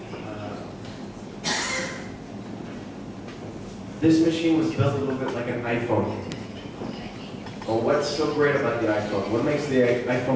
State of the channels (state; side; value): identical; both; correlation 1.00